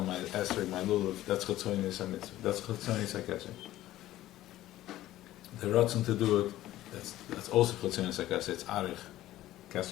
my esrog, my lulav. That's Chetzonis HaMitzvah. That's Chetzonis HaKeser. The ratzon to do it, that's also Chetzonis HaKeser. It's Arich.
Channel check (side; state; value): right; quieter; 14.7 dB